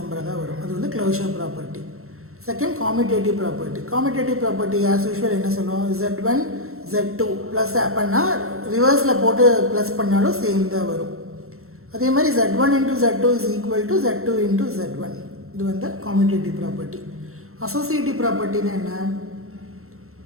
தான் வரும். அது வந்து closure property. Second காமிட்டேட்டிவ் property. காமிட்டேட்டிவ் property as usual என்ன சொல்லுவோம்? z1 z2 ப்ளஸ் பண்ணால் ரிவர்ஸில் போட்டு ப்ளஸ் பண்ணாலும் சேம் தான் வரும். அதே மாதிரி z1 into z2 is equal to z2 into z1. இது வந்து காமிட்டேட்டிவ் ப்ராப்பர்ட்டி. அசோசியேட்டிவ் ப்ராப்பர்ட்டினா என்ன?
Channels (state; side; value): late; left; 0.63 ms